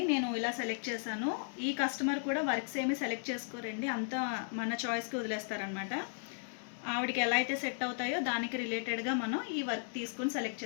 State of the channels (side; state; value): right; silent; digital silence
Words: నేను ఇలా సెలెక్ట్ చేశాను. ఈ కస్టమర్ కూడా వర్క్స్ ఏమి సెలెక్ట్ చేసుకోరండి, అంతా మన చాయిస్కి వదిలేస్తారనమాట. ఆవిడకి ఎలా అయితే సెట్ అవుతాయో దానికి రిలేటెడ్గా మనం ఈ వర్క్ తీసుకుని సెలెక్ట్